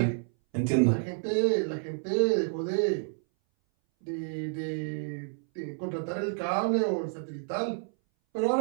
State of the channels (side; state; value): left; silent; 58 dB below the other